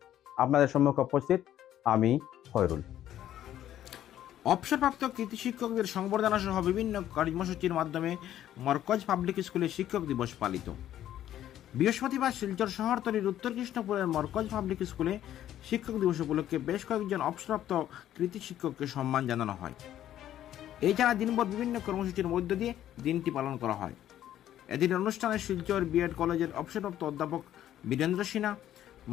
আপনাদের সম্মুখে উপস্থিত আমি খয়রুল। অবসরপ্রাপ্ত কৃতি শিক্ষকদের সংবর্ধনা সহ বিভিন্ন কর্মসূচির মাধ্যমে মরকজ পাবলিক স্কুলে শিক্ষক দিবস পালিত। বৃহস্পতিবার শিলচর শহরতলির উত্তর কৃষ্ণপুরের মরকজ পাবলিক স্কুলে শিক্ষক দিবস উপলক্ষে বেশ কয়েকজন অবসরপ্রাপ্ত কৃতি শিক্ষককে সম্মান জানানো হয়। এছাড়া দিনভর বিভিন্ন কর্মসূচির মধ্য দিয়ে দিনটি পালন করা হয়। এদিন অনুষ্ঠানে শিলচর বিএড কলেজের অবসরপ্রাপ্ত অধ্যাপক বীরেন্দ্র সিনহা,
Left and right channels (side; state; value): right; quieter; 11.9 dB